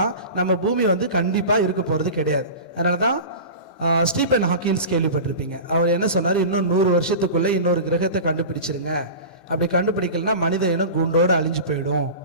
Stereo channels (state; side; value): late; right; 15 ms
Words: நம்ம பூமி வந்து கண்டிப்பாக இருக்க போகிறது கிடையாது. அதனால தான் ஸ்டீபன் ஹாக்கின்ஸ் கேள்விப்பட்டிருப்பீங்க. அவர் என்ன சொன்னார், இன்னும் 100 வருஷத்துக்குள்ளே இன்னொரு கிரகத்தை கண்டுபிடிச்சிருங்க, அப்படி கண்டுபிடிக்கலன்னா மனித இனம் கூண்டோடு அழிஞ்சு போயிடும்